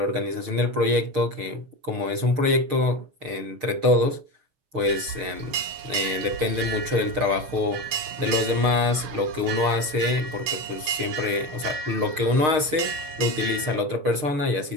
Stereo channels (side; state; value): left; late; 6.5 ms